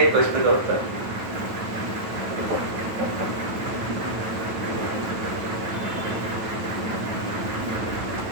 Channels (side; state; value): left; late; 9.3 ms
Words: प्रश्न का उत्तर।